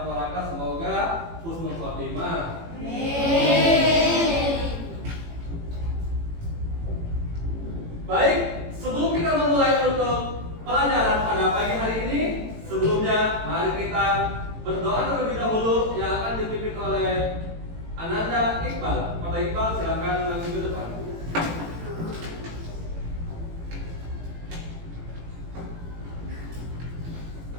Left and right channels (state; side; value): late; left; 18 ms